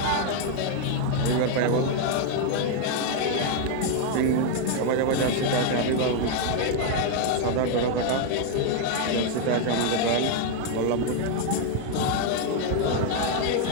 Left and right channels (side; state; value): both; different; correlation 0.00